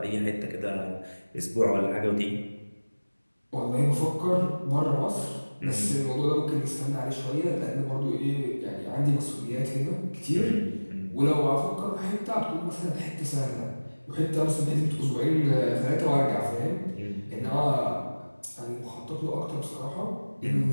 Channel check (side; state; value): both; inverted; correlation -1.00